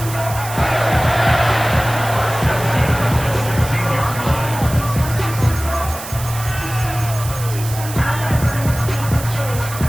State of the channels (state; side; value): noise; right; hiss, 11 dB below the sound